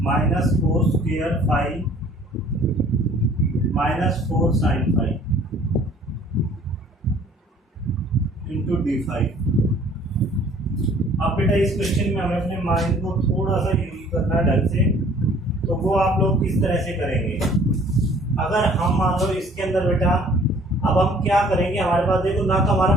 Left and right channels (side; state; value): both; normal; correlation 0.54